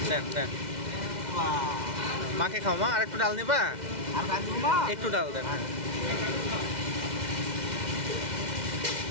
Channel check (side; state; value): left; late; 2.1 ms